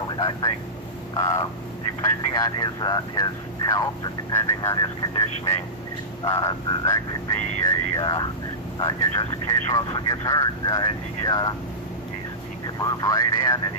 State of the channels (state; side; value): normal; both; correlation -0.17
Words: I think depending on his health and depending on his conditioning, that could be just in case Russell gets hurt, he could move right in, and